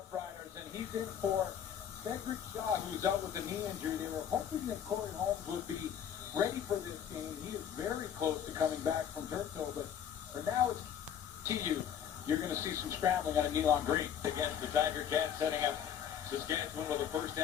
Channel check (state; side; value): quieter; right; 9.1 dB